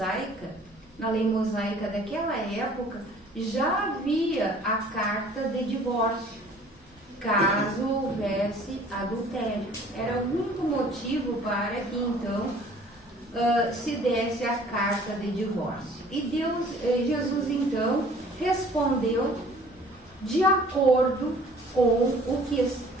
daquela época, já havia a carta de divórcio, caso houvesse adultério. Era o único motivo para que então se desse a carta de divórcio. E Jesus então respondeu de acordo com o que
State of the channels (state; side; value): normal; both; correlation 0.52